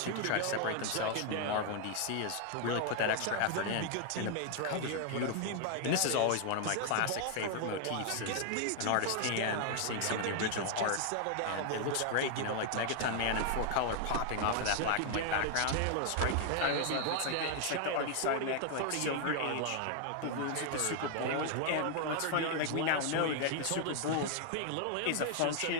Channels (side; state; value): both; different; correlation 0.00